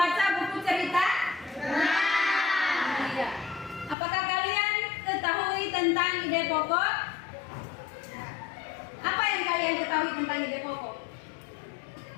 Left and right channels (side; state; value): right; drops out; at 4.0 s